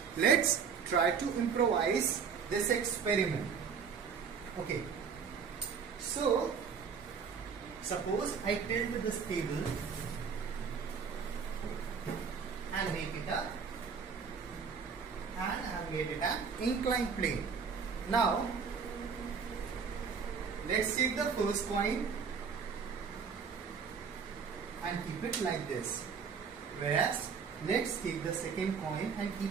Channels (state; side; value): quieter; left; 6.2 dB